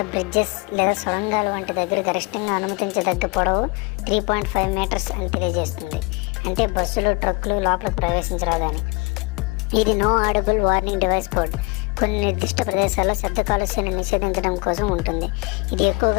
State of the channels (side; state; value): right; quieter; 27.1 dB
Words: బ్రిడ్జెస్ లేదా సొరంగాలు వంటి దగ్గర గరిష్టంగా అనుమతించదగ్గ పొడవు 3.5 మీటర్స్ అని తెలియజేస్తుంది. అంటే బస్సులు, ట్రక్కులు లోపలికి ప్రవేశించరాదు అని. ఇది no audible warning device board. కొన్ని నిర్దిష్ట ప్రదేశాల్లో శబ్ద కాలుష్యాన్ని నిషేధించడం కోసం ఉంటుంది. ఇది